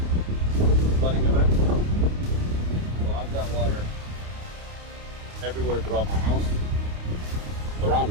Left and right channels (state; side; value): late; left; 29 ms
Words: flooding event, so I've got water everywhere throughout my house. Around